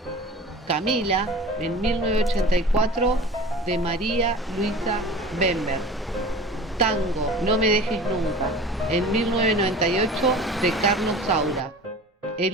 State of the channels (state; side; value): normal; both; correlation 0.39